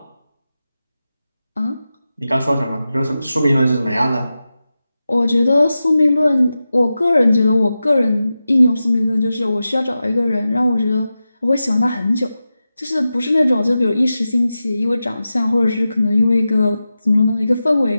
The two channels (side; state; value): both; inverted; correlation -0.93